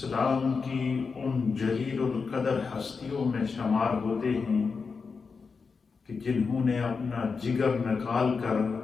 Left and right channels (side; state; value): right; quieter; 5.0 dB